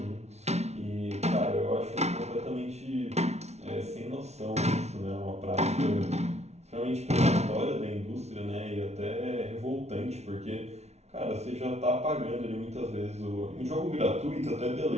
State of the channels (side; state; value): left; late; 0.31 ms